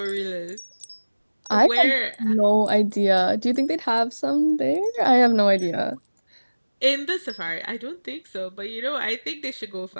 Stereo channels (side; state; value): both; inverted; correlation -1.00